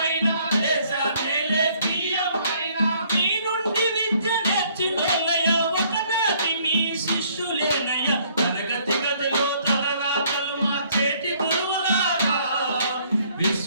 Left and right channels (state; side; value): inverted; both; correlation -0.63